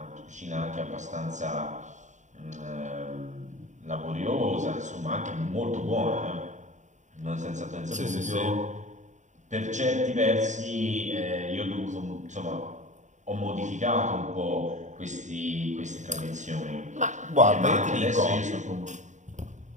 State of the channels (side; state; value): left; late; 0.35 ms